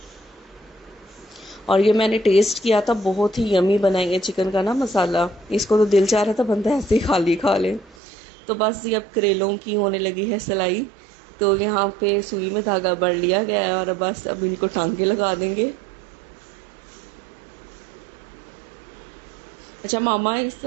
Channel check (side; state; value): left; drops out; at 8.0 s